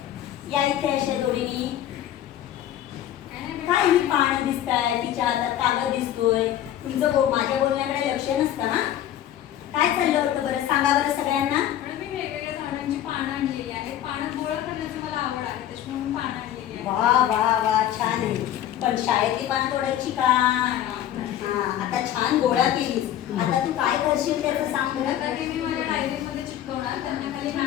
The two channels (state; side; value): quieter; right; 11.6 dB